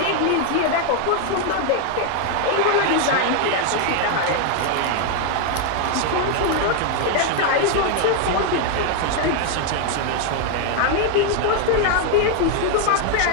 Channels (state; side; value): different; both; correlation 0.00